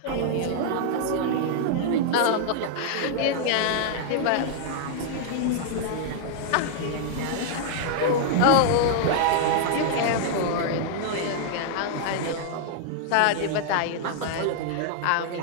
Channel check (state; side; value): different; both; correlation -0.01